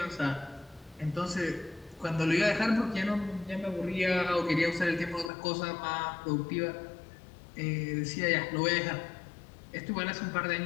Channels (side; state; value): right; drops out; at 5.3 s